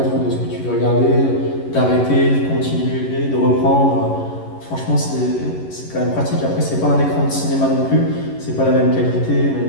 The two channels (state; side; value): late; right; 11 ms